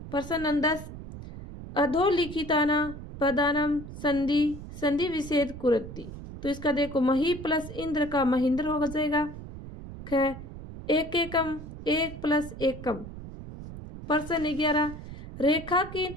प्रश्न 10, अधोलिखिताना पदानम संधि संधि विच्छेद कुरति। तो इसका देखो मही प्लस इंद्र का महेंद्र हो जाएगा। ख, एक एकम 1 प्लस एकम। प्रश्न 11,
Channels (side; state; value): right; noise; rumble, 12 dB below the sound